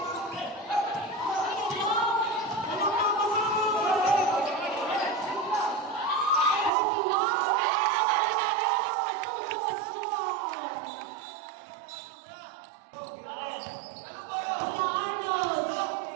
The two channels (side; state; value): left; drops out; at 6.7 s